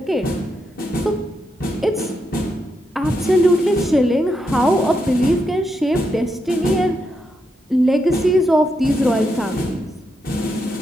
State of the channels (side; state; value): both; normal; correlation 0.82